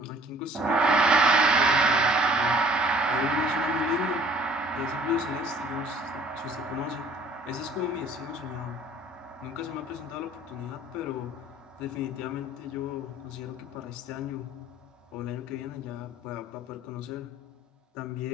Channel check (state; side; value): normal; both; correlation 0.54